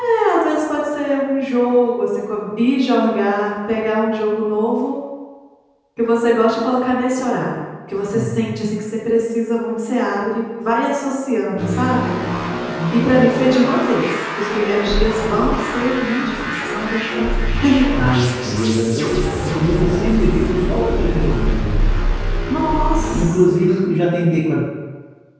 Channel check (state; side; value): identical; both; correlation 1.00